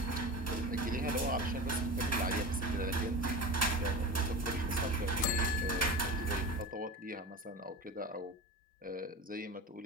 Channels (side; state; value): both; normal; correlation 0.30